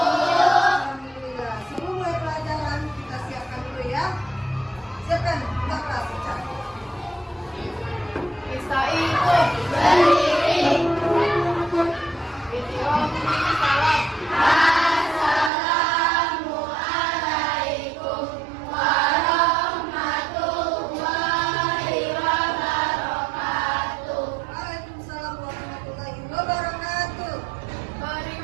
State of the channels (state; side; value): drops out; left; at 15.5 s